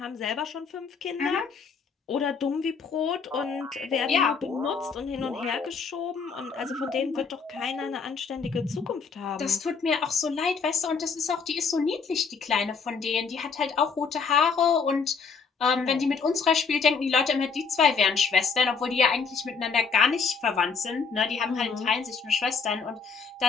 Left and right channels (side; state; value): right; quieter; 5.5 dB